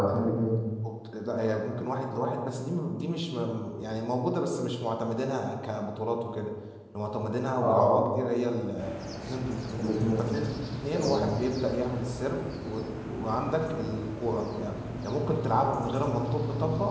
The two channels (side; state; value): both; identical; correlation 1.00